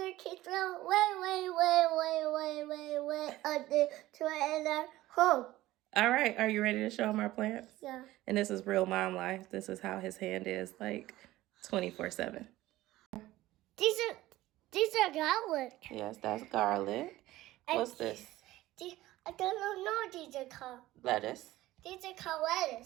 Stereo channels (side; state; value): left; quieter; 16.5 dB